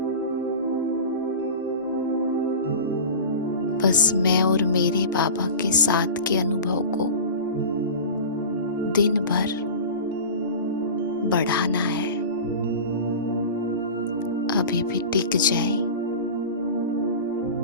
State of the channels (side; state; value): both; inverted; correlation -0.32